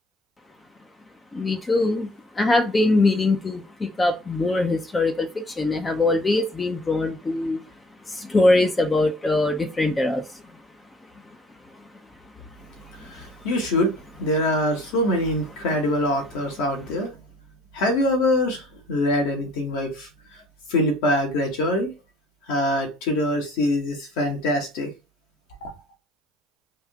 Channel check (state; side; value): normal; both; correlation 0.57